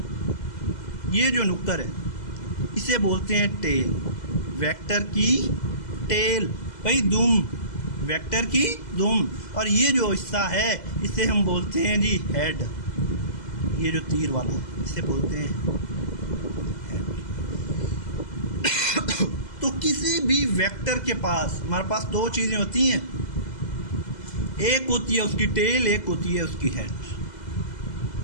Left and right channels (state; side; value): late; right; 2.0 ms